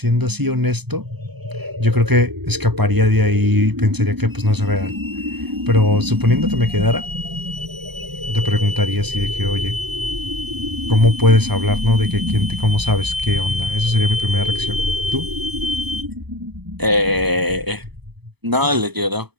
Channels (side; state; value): left; late; 0.98 ms